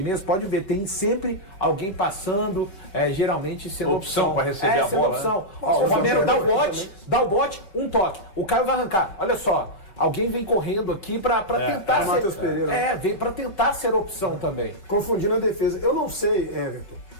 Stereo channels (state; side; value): late; right; 5.2 ms